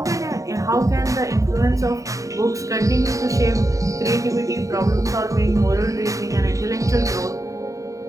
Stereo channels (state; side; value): late; left; 0.16 ms